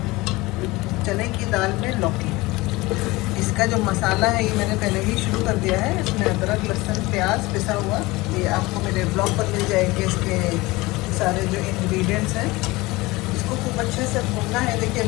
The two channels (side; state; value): right; quieter; 21.4 dB